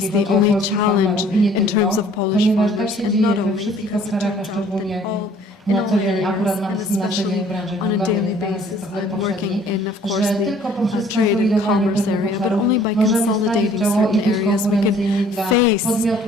the only challenge in terms of Polish farmers, and not only because it turns out that in all areas, and especially on a daily basis. I'm working in, of course, the trade and commerce area, but only by consolidating certain areas we can face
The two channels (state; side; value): normal; both; correlation 0.56